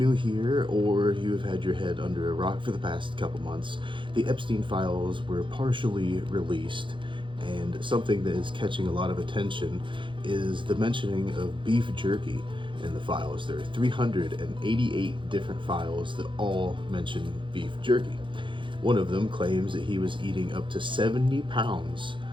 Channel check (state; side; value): late; left; 0.24 ms